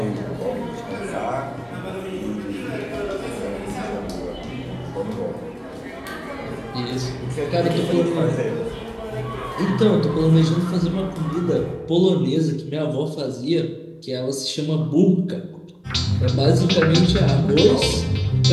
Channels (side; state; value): both; identical; correlation 1.00